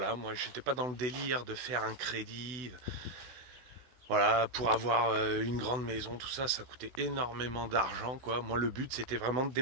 moi j'étais pas dans le délire de faire un crédit. Voilà, pour avoir une grande maison, tout ça, ça coûtait énormément d'argent, quoi. Moi le but c'était vraiment de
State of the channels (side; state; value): left; late; 16 ms